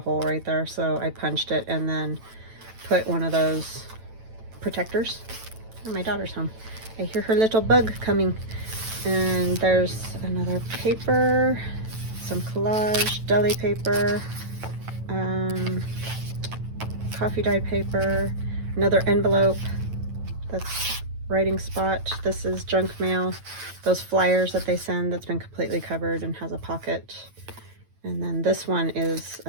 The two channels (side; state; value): left; late; 9.1 ms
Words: right there, so I punched it and then put one of those protectors. Oh, my daughter's home. I hear her little bug coming. And there's another paper, some collage, deli paper, coffee dyed paper, another envelope. That's writing spot. This is junk mail. Those flyers that they send that's been completely covered and has a pocket. And then this one is